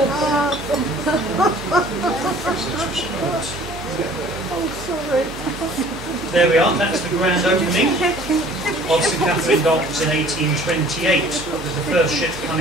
There we are, that's the grand opening of St Catherine Docks in 1828, with the first ship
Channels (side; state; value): both; normal; correlation 0.51